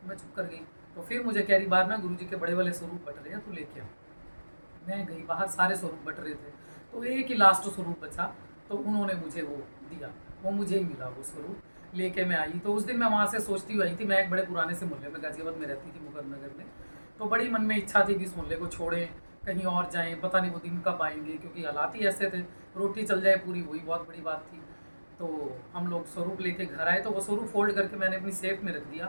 तो मैं चुप कर गई। तो फिर मुझे कह रही बाहर ना गुरुजी के बड़े वाले स्वरूप बट रहे हैं, तू लेके आ। मैं गई बाहर, सारे स्वरूप बट रहे थे, तो एक ही लास्ट स्वरूप बचा, तो उन्होंने मुझे वो दिया, वो मुझे ही मिला वो स्वरूप। लेके मैं आई। तो उस दिन मैं वहाँ से सोचती हुई आई थी, मैं एक बड़े पुराने से मोहल्ले में गाजियाबाद में रहती थी, मुकरनगर में। तो बड़ी मन में इच्छा थी कि इस मोहल्ले को छोड़ें, कहीं और जाएं, पता नहीं वो दिन कब आएंगे, क्योंकि हालात ही ऐसे थे, रोटी चल जाए पूरी, वही बहुत बड़ी बात थी। तो हम लोग स्वरूप लेके घर आए, तो वो स्वरूप फोल्ड करके मैंने अपनी सेफ में रख दिया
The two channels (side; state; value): both; inverted; correlation -1.00